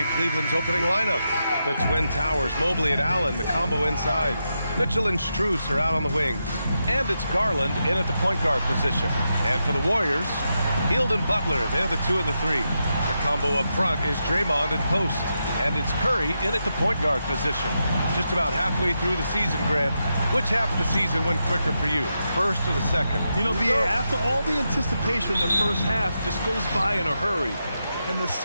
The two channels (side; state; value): both; inverted; correlation -0.86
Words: Cleveland's opening lineup. The Twin Towers, Mobley and Allen, the combo inside. Mitchell and Strus are out on the wings. And it's Garland in at the point guard position. And for the Warriors, Hield and Butler, they're the 2 and the 3. The combo up front is Draymond and post. And it's Curry in at the point guard position. Just about halfway through the season, Grant. Which half of the season went quicker for you, first or the second? You know, B.A., after all the anticipation, the first half just goes by in a hurry. In the